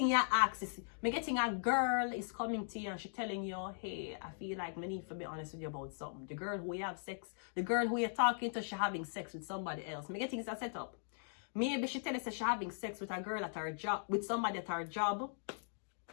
your access. Me getting a girl is coming to you and she telling you, hey, I feel like me need to be honest with you about something. The girl who you have sex, the girl who you're talking to, she having sex with somebody else. Me getting is a setup. Maybe she tell us that she's having sex with a girl at her job, with somebody at her job.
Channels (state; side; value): silent; right; digital silence